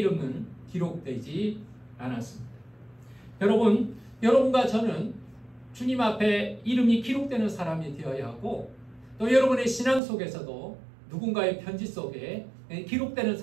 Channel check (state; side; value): drops out; left; at 10.0 s